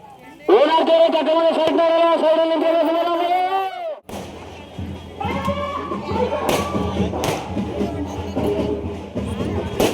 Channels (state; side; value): identical; both; correlation 1.00